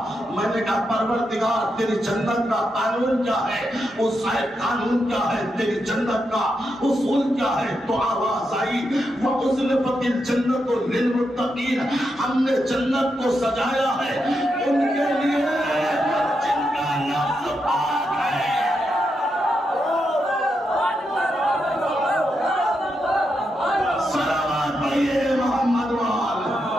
میں نے کہا پروردگار تیری جنت کا قانون کیا ہے, اس قانون کیا ہے, تیری جنت کا اصول کیا ہے؟ تو آواز آئی وَأُزْلِفَتِ الْجَنَّةُ لِلْمُتَّقِينَ. ہم نے جنت کو سجایا ہے ان کے لیے جن کا نفس پاک ہے. صلوات پڑھیے محمد وال.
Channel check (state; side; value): normal; both; correlation 0.84